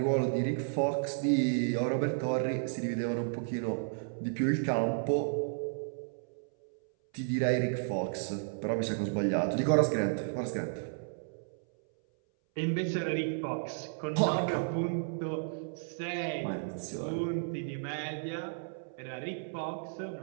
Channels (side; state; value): left; silent; 56 dB below the other